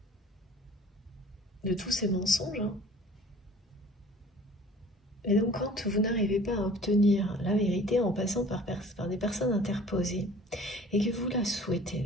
De tous ces mensonges. Hein. Et donc, quand vous n'arrivez pas à obtenir la vérité en passant par des personnes interposées, et que vous la souhaitez,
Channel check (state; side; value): normal; both; correlation 0.48